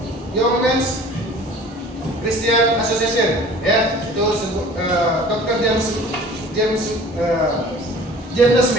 Young Men's Christian Association, ya. Itu Dr. James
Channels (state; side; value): normal; both; correlation 0.46